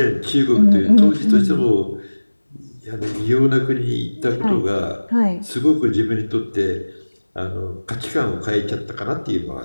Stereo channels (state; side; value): inverted; both; correlation -1.00